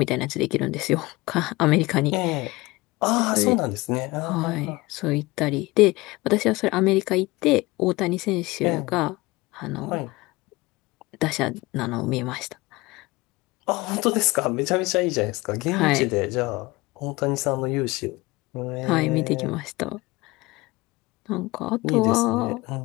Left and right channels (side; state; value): right; quieter; 21.7 dB